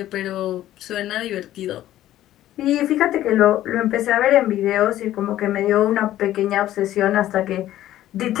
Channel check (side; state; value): right; quieter; 13.4 dB